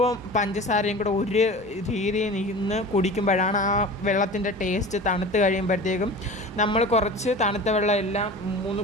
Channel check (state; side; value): normal; both; correlation 0.36